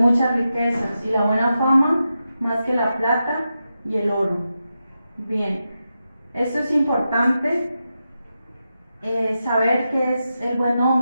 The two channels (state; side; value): inverted; both; correlation -0.89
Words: riquezas, y la buena fama más que la plata y el oro. Bien, esto es importante, saber qué es el buen